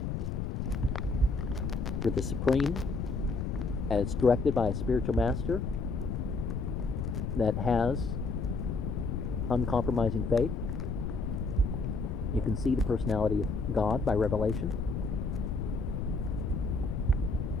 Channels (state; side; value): noise; left; rumble, 2 dB below the sound